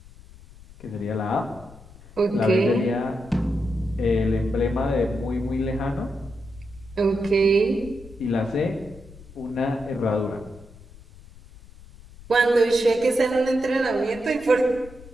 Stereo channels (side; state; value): left; noise; rumble, 20 dB below the sound